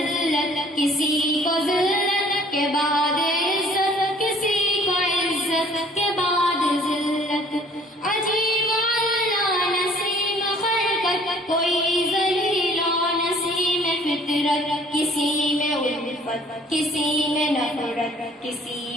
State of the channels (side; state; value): both; normal; correlation 0.55